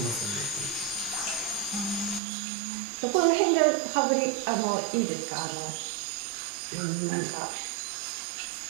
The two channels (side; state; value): left; drops out; at 2.2 s